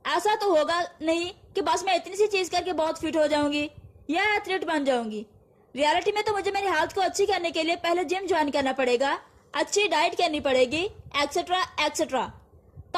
ऐसा तो होगा नहीं कि बस मैं इतनी सी चीज करके बहुत फिट हो जाऊंगी या एथलीट बन जाऊंगी। रियलिटी में तो मुझे मेरी हेल्थ को अच्छी करने के लिए पहले जिम ज्वाइन करना पड़ेगा, अच्छी डाइट करनी पड़ेगी, एक्सेट्रा एक्सेट्रा,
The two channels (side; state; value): both; identical; correlation 1.00